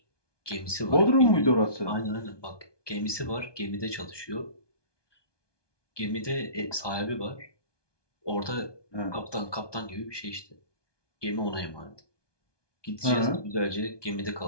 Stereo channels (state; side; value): late; right; 1.2 ms